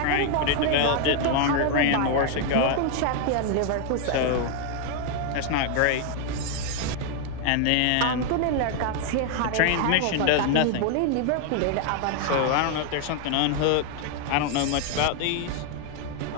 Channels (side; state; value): both; different; correlation 0.00